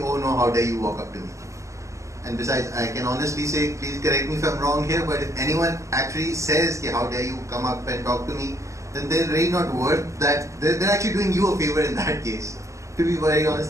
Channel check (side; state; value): left; late; 0.15 ms